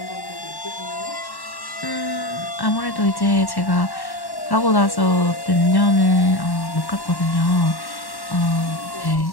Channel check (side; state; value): right; late; 1.1 ms